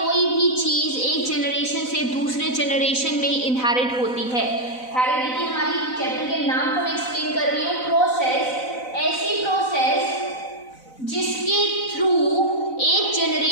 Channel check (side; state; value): right; late; 4.0 ms